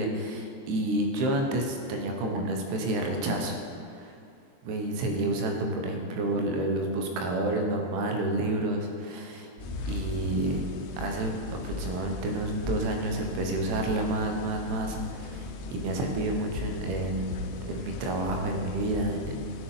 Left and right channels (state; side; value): late; left; 23 ms